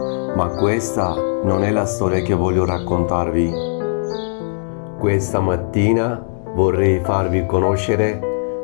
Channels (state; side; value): silent; right; 67 dB below the other